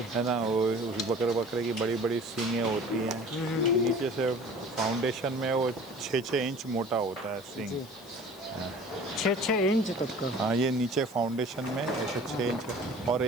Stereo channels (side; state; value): left; noise; hiss, 22 dB below the sound